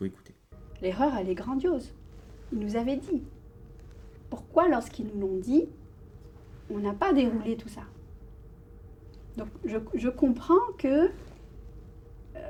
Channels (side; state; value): both; identical; correlation 1.00